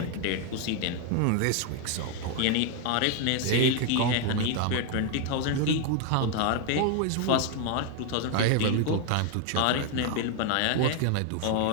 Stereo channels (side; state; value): both; different; correlation 0.01